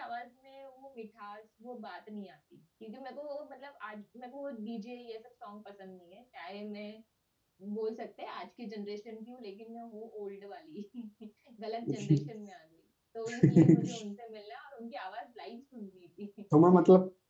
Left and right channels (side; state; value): both; identical; correlation 1.00